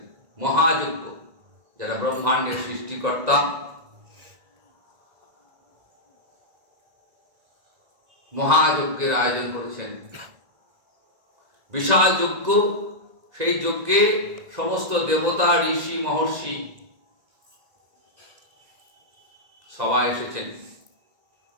মহাযজ্ঞ। যারা ব্রহ্মাণ্ডের সৃষ্টিকর্তা, মহাযজ্ঞের আয়োজন করেছেন, বিশাল যজ্ঞ। সেই যজ্ঞে সমস্ত দেবতা, ঋষি, মহর্ষি সবাই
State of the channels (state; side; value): late; left; 2.0 ms